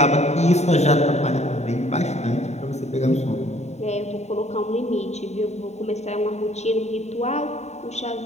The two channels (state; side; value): late; right; 0.32 ms